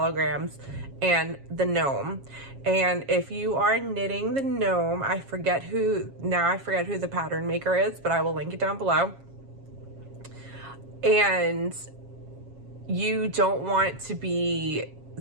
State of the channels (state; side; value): late; left; 7.3 ms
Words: and the gnome. And if you are knitting the gnome, I forget who the pattern maker is, but I will link it down below. And you don't want the